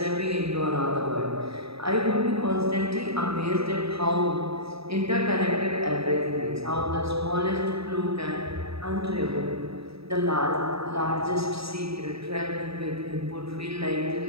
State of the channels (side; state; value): left; late; 0.77 ms